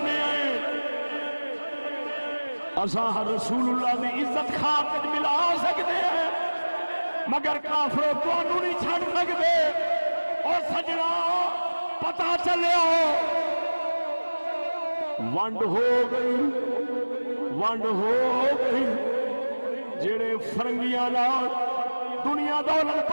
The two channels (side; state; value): both; inverted; correlation -1.00